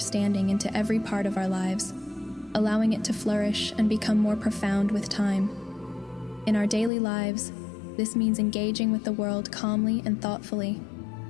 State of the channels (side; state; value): right; drops out; at 6.9 s